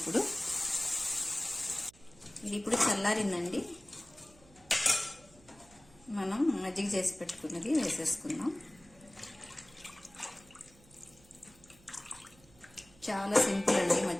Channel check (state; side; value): noise; right; hum, 26 dB below the sound